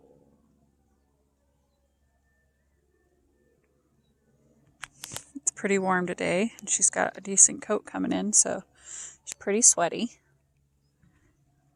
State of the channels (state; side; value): identical; both; correlation 1.00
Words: It's pretty warm today, and she's got a decent coat coming in, so she's pretty sweaty.